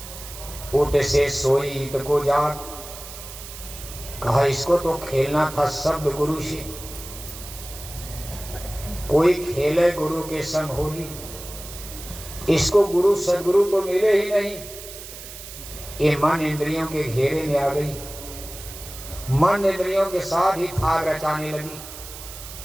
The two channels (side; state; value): right; noise; hiss, 13 dB below the sound